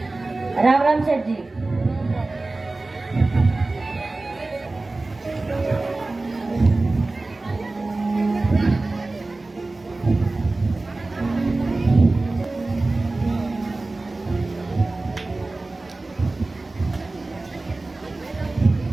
राम राम सेठ जी।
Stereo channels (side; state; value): left; quieter; 3.2 dB